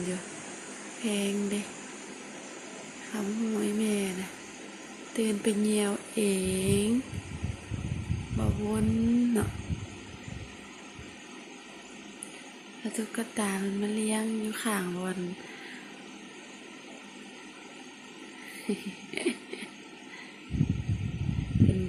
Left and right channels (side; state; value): both; identical; correlation 1.00